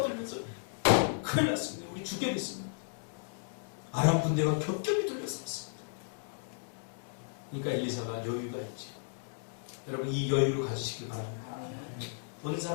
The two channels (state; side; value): silent; right; 55 dB below the other